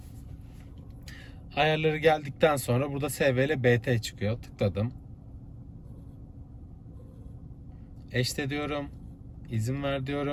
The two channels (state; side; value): identical; both; correlation 1.00